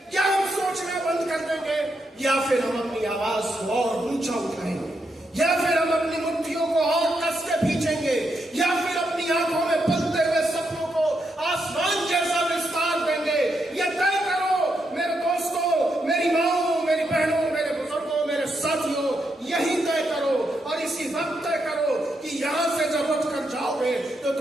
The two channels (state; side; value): normal; both; correlation 0.81